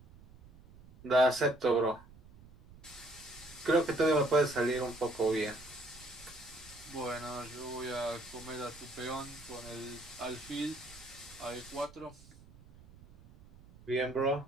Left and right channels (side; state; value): right; noise; rumble, 22 dB below the sound